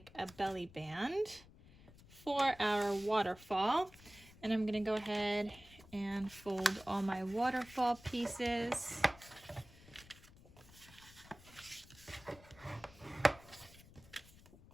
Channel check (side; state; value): left; noise; rumble, 22 dB below the sound